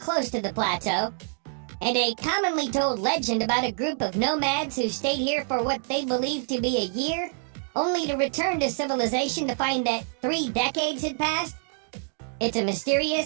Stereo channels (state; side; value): silent; left; digital silence